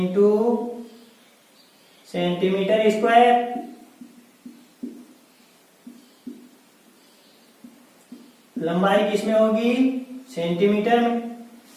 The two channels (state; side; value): identical; both; correlation 1.00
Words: सेंटीमीटर स्क्वायर। लंबाई किसमें होगी? सेंटीमीटर में।